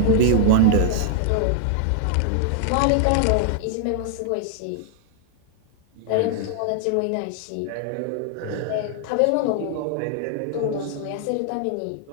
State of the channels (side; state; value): both; different; correlation -0.01